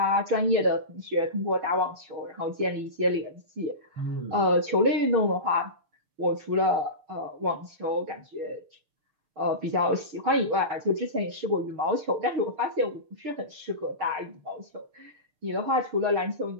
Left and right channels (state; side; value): late; left; 6.3 ms